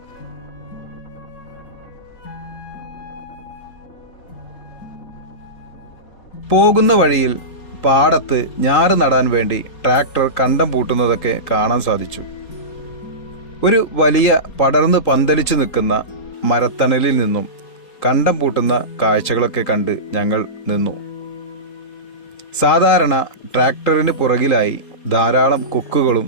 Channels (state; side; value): late; right; 3.8 ms